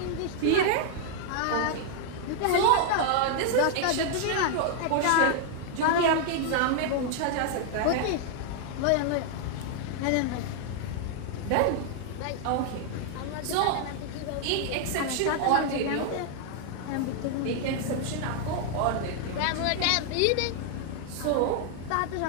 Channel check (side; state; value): both; different; correlation 0.00